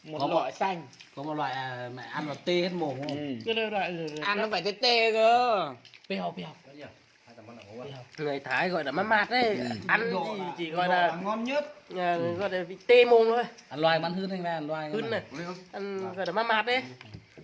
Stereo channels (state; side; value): identical; both; correlation 1.00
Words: một Có một- loại xanh. Có một loại mẹ ăn vào tê hết mồm không? Ừ. cái loại Ăn nó phải tê tê cơ. bèo Người Thái gọi là mát mát đấy, ăn chỉ gọi là ngon nhất. gọi là vị tê mồm thôi. Ăn loài bắn hươn anh ra ăn loài. Hươn này, ăn gọi là mát mát đấy.